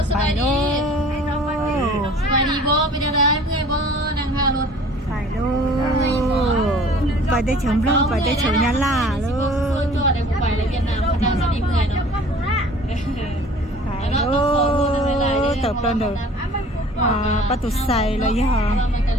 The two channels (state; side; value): normal; both; correlation 0.49